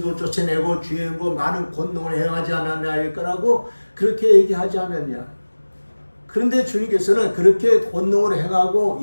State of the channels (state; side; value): inverted; both; correlation -1.00